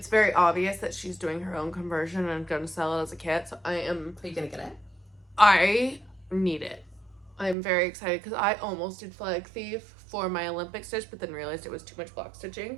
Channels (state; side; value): drops out; left; at 7.6 s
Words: very obvious that she's doing her own conversion and going to sell it as a kit. So Are you gonna get it? I need it. I'm very excited because I almost did Flag Thief for my Olympic stitch, but then realized it was too much block